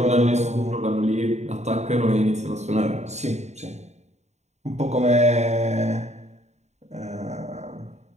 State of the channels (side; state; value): left; late; 0.32 ms